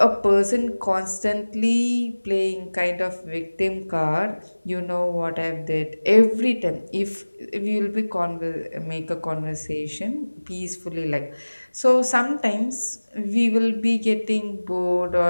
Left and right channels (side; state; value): both; inverted; correlation -1.00